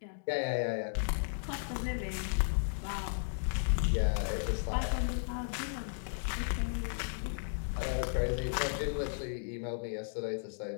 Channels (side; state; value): right; silent; digital silence